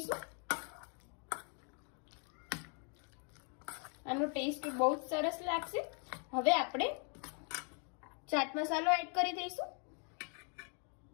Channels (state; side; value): quieter; right; 39.6 dB